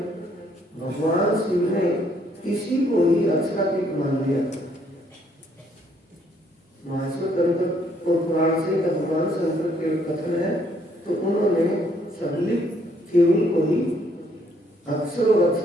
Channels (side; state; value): both; normal; correlation 0.67